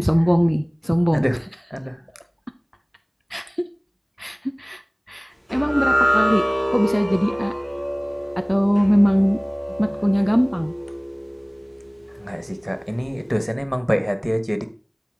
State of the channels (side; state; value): both; identical; correlation 1.00